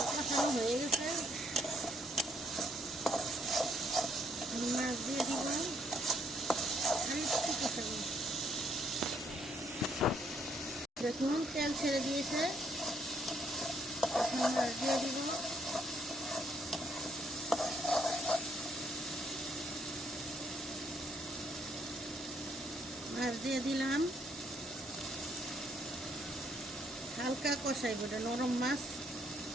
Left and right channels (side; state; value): both; normal; correlation 0.70